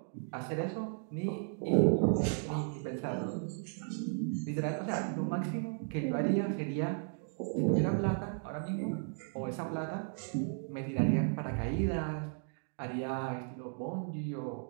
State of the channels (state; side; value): silent; left; 54 dB below the other